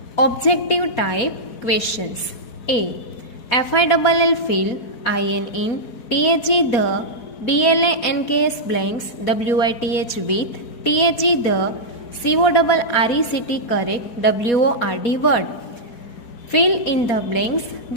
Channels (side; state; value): right; late; 4.2 ms